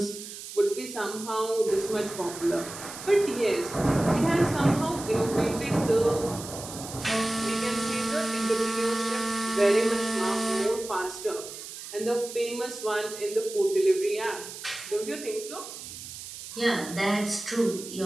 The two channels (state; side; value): noise; right; hiss, 11 dB below the sound